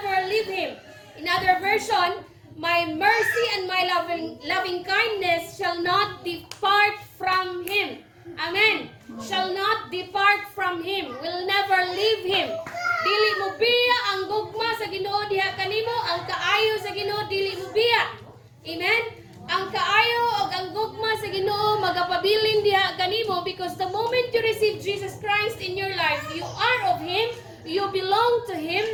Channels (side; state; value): both; identical; correlation 1.00